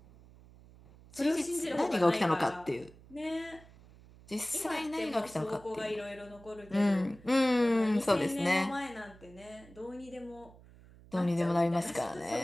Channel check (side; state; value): right; noise; hum, 23 dB below the sound